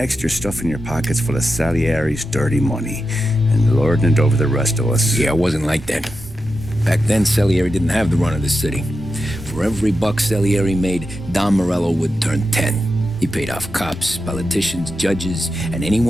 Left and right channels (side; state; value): both; normal; correlation 0.89